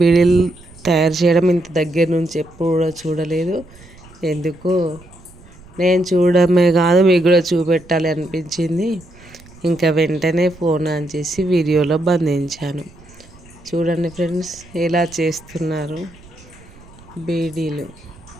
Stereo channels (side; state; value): right; noise; rumble, 23 dB below the sound